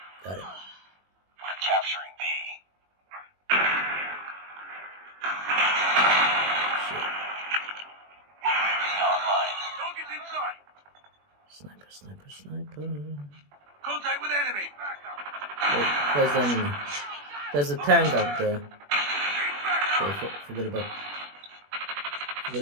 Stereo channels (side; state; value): left; late; 21 ms